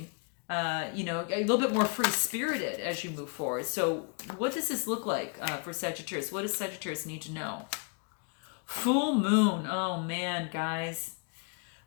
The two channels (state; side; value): quieter; right; 36.3 dB